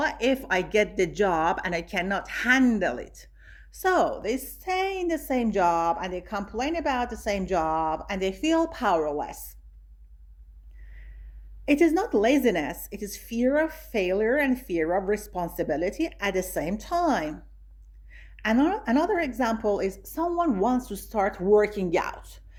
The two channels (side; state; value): both; identical; correlation 1.00